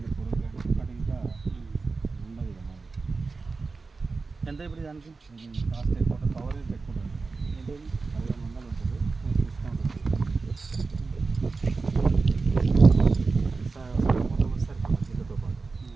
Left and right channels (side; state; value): left; quieter; 4.1 dB